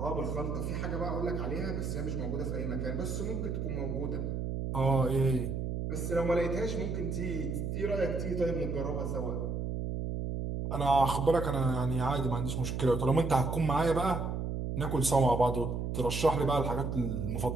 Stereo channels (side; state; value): right; noise; hum, 2 dB below the sound